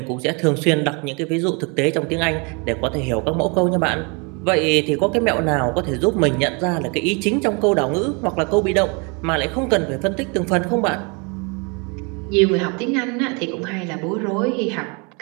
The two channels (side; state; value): left; quieter; 32.0 dB